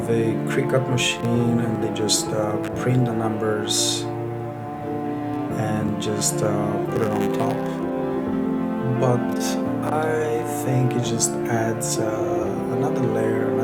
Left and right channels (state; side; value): identical; both; correlation 1.00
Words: a Cricut machine and they just print the numbers and just put it on top. But I think it just adds another layer,